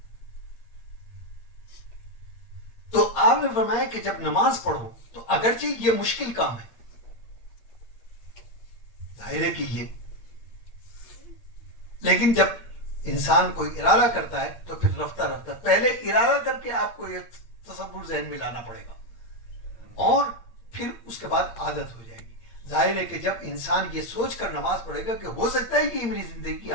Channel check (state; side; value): late; right; 8.6 ms